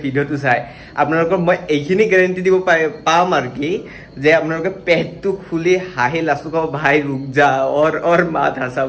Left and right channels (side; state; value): both; identical; correlation 1.00